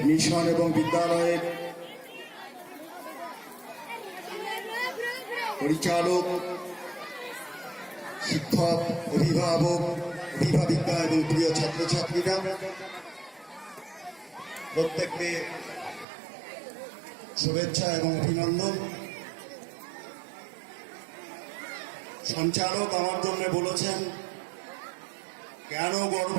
মিশন এবং বিদ্যালয়ের পরিচালক, শিক্ষক, অভিভাবক, অভিভাবিকা এবং প্রিয় ছাত্রছাত্রীরা, প্রত্যেককে শুভেচ্ছা এবং অভিনন্দন। সঞ্চালক আমার জন্য বলেছেন কেন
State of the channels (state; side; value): drops out; left; at 16.1 s